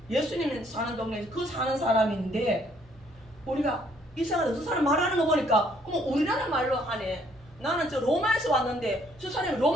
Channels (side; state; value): both; normal; correlation 0.66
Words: 예수님이 사는 동네에서 그 사는 사람인데 우리가 이상하다. 저 사람 말하는 거 보니까 우리나라 말로 하네. 나는 저 로마에서 왔는데 저 사람이